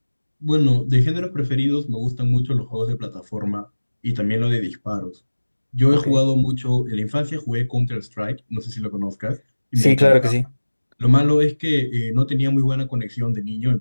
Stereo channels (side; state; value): both; inverted; correlation -1.00